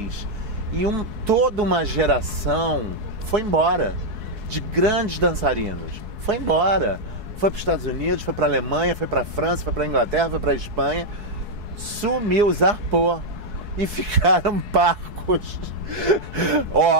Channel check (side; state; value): left; late; 4.7 ms